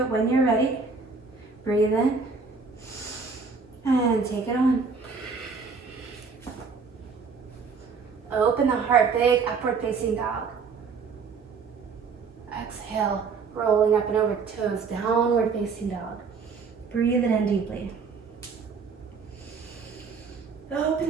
it, when you're ready, breathe in and take it on. Open the heart, big upward facing dog. Exhale, rolling up and over toes, downward facing dog. Breathe it in deeply. Open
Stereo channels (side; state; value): left; quieter; 5.0 dB